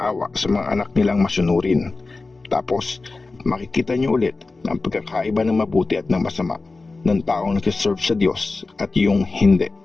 sa mga anak nilang masunurin. Tapos makikita niyo ulit ang pagkakaiba ng mabuti at ng masama, ng taong nagsiserve sa Diyos at yung hindi.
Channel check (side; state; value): right; quieter; 3.6 dB